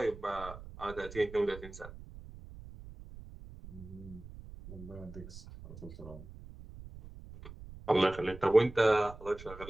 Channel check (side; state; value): right; noise; rumble, 15 dB below the sound